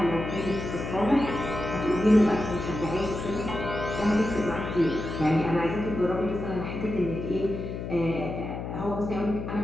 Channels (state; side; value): noise; left; hum, 6 dB below the sound